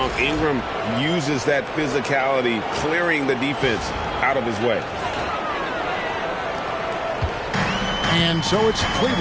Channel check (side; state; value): both; identical; correlation 1.00